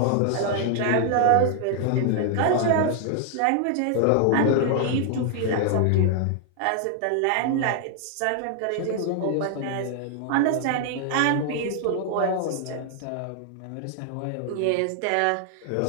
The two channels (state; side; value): different; both; correlation 0.00